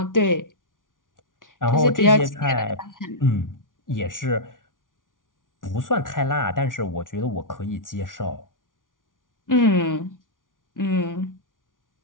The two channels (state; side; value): late; right; 0.89 ms